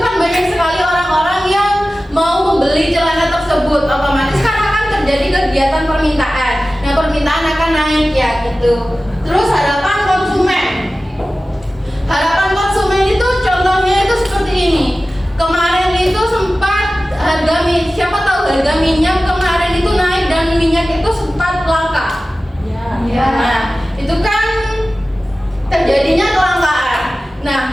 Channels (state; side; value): normal; both; correlation 0.96